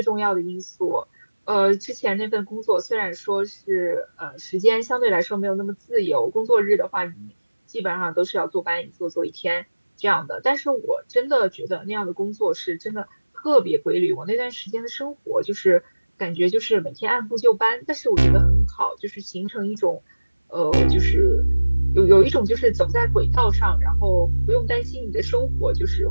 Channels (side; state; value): both; inverted; correlation -1.00